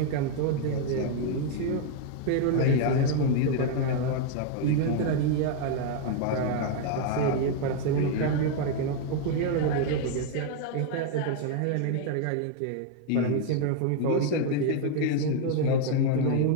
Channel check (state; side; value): different; both; correlation 0.00